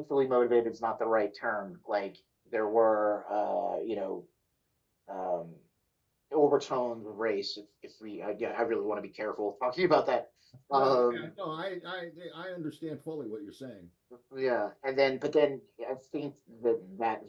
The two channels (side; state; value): both; identical; correlation 1.00